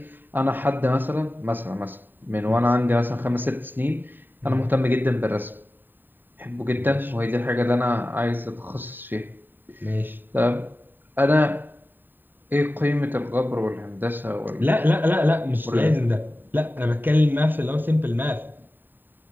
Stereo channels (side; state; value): left; late; 0.092 ms